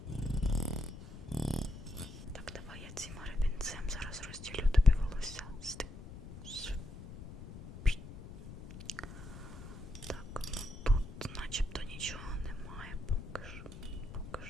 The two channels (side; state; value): left; noise; rumble, 13 dB below the sound